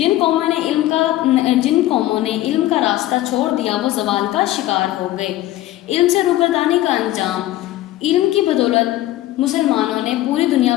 قوموں نے علم کا راستہ چھوڑ دیا وہ زوال کا شکار ہو گئے۔ علم سے روگردانی کا انجام: علم کی بدولت مسلمانوں نے پوری دنیا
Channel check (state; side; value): quieter; right; 15.2 dB